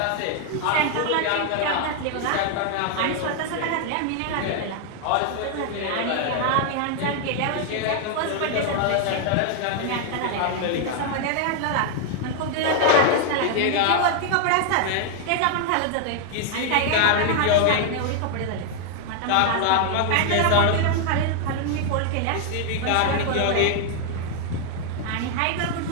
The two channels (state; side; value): different; both; correlation 0.00